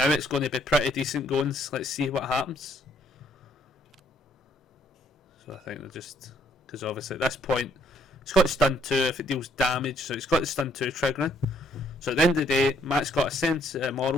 it's going to be pretty decent going. Let's see what happens. So I think they're just... because obviously at this point it's got stun 2 if it deals damage, so it's got the stun 2 triggering. So at the end of the day, Matt's got a sense of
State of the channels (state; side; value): normal; both; correlation 0.67